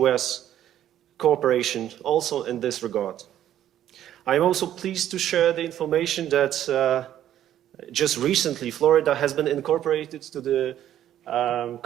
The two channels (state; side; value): quieter; left; 11.5 dB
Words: cooperation also in this regard. I am also pleased to share the information that just recently Florida has been incorporated to the